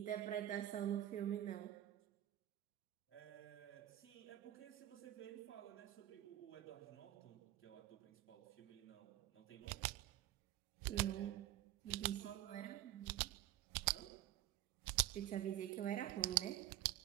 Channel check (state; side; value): quieter; left; 13.8 dB